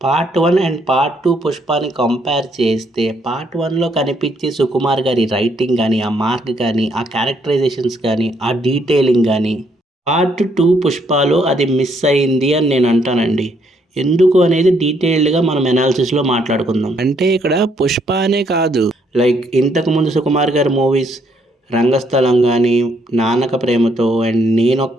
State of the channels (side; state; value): both; normal; correlation 0.71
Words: పార్ట్ 1 అండ్ పార్ట్ 2 పుష్పాని కంపేర్ చేస్తే పార్ట్ 1లో కనిపించే సుకుమార్ గారి రైటింగ్ కానీ, ఆ మార్క్ కానీ, ఆ క్యారెక్టరైజేషన్స్ కానీ, ఆ డీటెయిలింగ్ కానీ పార్ట్ 2 పుష్పలో అది మిస్ అయింది అని నేను అంటానండి. ఎందుకు అనేది డీటెయిల్డ్గా మనం ఎనాలిసిస్లో మాట్లాడుకుందాం. అంటే ఇక్కడ పుష్ప అనే కాదు, లైక్ ఇంతకుముందు సుకుమార్ గారి మూవీస్ రంగస్థలం కానీ, నాన్నక ప్రేమతో అండ్